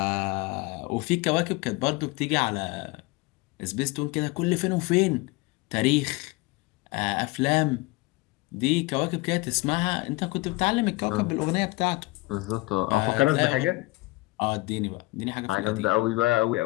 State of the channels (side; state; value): right; quieter; 22.3 dB